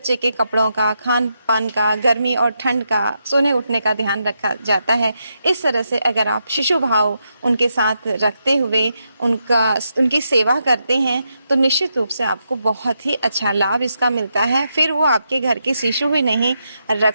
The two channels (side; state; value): both; inverted; correlation -0.83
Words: के कपड़ों का, खान पान का, गर्मी और ठंड का, सोने उठने का ध्यान रखा जाता है, इस तरह से अगर आप शिशु भाव उनके साथ रखते हुए उनकी सेवा करते हैं तो निश्चित रूप से आपको बहुत ही अच्छा लाभ इसका मिलता है। फिर वो आपके घर के शिशु ही नहीं,